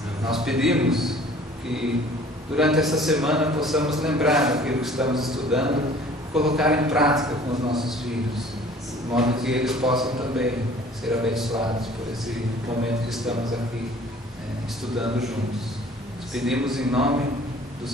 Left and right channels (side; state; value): both; normal; correlation 0.50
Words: Nós pedimos que durante essa semana possamos lembrar daquilo que estamos estudando, colocar em prática com os nossos filhos, de modo que eles possam também ser abençoados por esse momento que estamos aqui estudando juntos. Nós pedimos em nome do